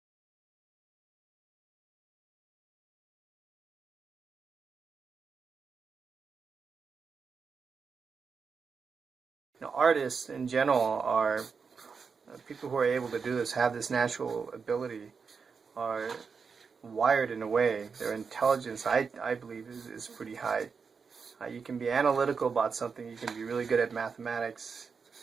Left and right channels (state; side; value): quieter; left; 5.5 dB